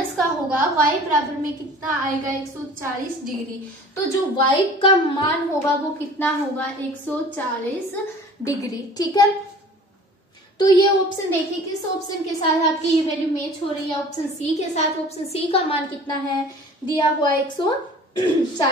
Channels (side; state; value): both; normal; correlation 0.46